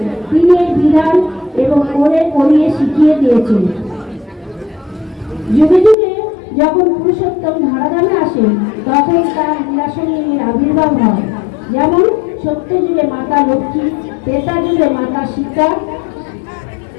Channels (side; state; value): right; drops out; at 6.0 s